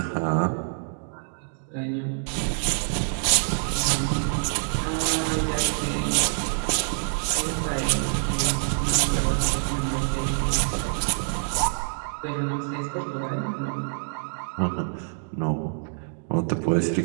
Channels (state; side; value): silent; left; digital silence